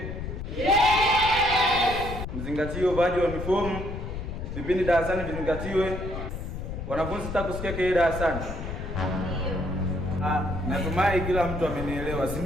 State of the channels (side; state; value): left; noise; rumble, 6 dB below the sound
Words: Yes! Mzingatie uvaaji wa uniform. Vipindi darasani vizingatiwe. Wanafunzi sitaki kusikia kelele darasani. Ndio. Natumai kila mtu amenielewa, si